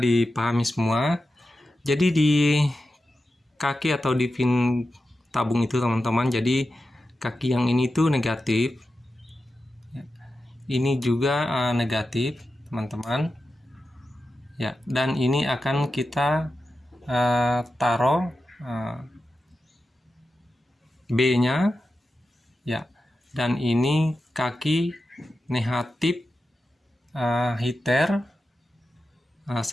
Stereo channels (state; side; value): normal; both; correlation 0.91